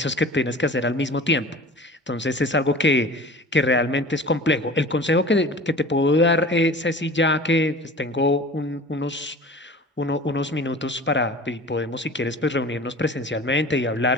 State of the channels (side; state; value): both; normal; correlation 0.40